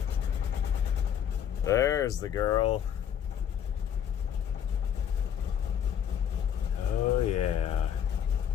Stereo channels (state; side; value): quieter; right; 8.9 dB